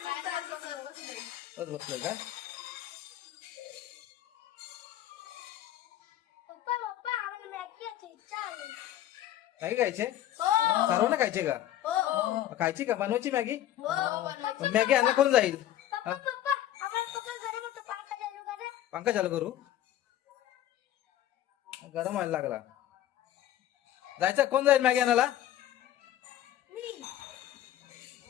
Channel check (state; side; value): quieter; right; 12.5 dB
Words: बसले काय? मॅगी खायचे? सर्वांना खायचे का? खायची का? बनवायची मॅगी? मॅगी आणला कोण जाईल? पंखा चालू करू? गरम व्हायला लागला। जायचं कोण जाईल मॅगी आणायला?